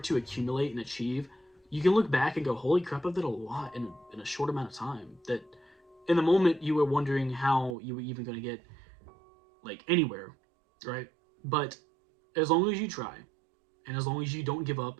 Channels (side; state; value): left; drops out; at 7.8 s